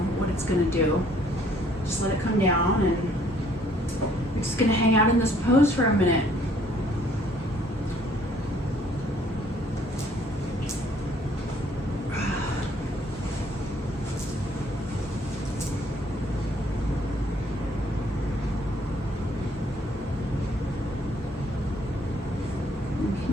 what it's going to do. Just let it come down, and we're just going to hang out in this pose for a minute.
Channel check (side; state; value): both; normal; correlation 0.62